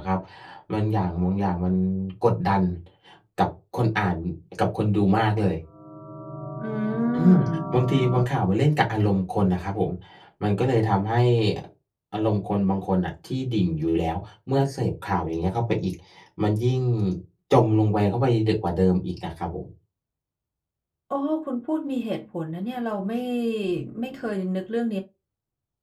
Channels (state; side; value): identical; both; correlation 1.00